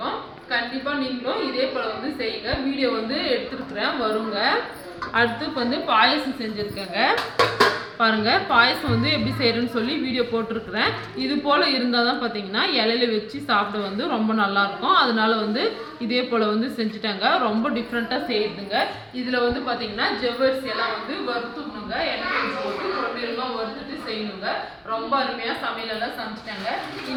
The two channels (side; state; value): both; identical; correlation 1.00